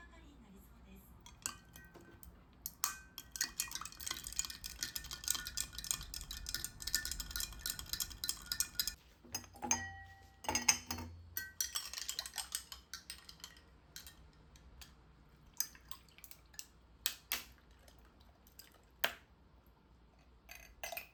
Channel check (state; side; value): identical; both; correlation 1.00